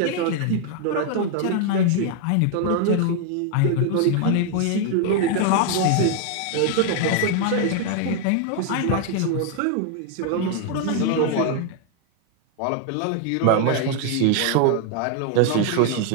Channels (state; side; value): different; both; correlation 0.00